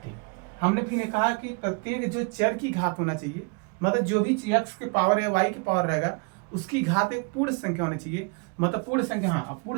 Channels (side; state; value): left; quieter; 33.7 dB